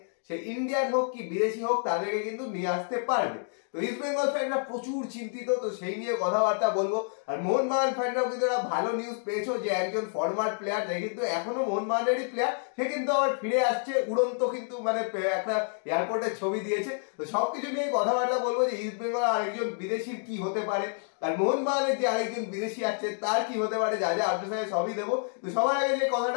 সে ইন্ডিয়ান হোক কি বিদেশি হোক, তাদেরকে কিন্তু নিয়ে আসতে পারবে। তো ইস্ট বেঙ্গল ফ্যানরা প্রচুর চিন্তিত, তো সেই নিয়ে কথাবার্তা বলবো। আর মোহনবাগান ফ্যানরাও কিন্তু একটা ভালো নিউজ পেয়েছো যে একজন ফরওয়ার্ড প্লেয়ার, যে কিন্তু এখনো মোহনবাগানেরই প্লেয়ার, সে কিন্তু আবার ফিরে আসছে উড়ন্ত, কিন্তু মানে একটা এয়ারপোর্টের ছবি দিয়েছে। তো সবকিছু নিয়ে কথাবার্তা বলবো যে ইস্ট বেঙ্গল আরেকজন বিদেশির কি হতে পারে, আর মোহনবাগানের যে আরেকজন বিদেশি আসছে তার কি হতে পারে, যা যা আপডেট সবই দেবো। তো সবার আগে যে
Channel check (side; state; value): right; silent; 59 dB below the other